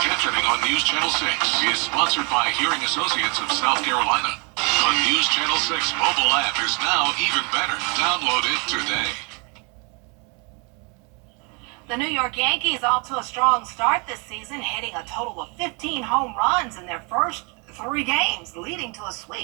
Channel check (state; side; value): quieter; left; 32.7 dB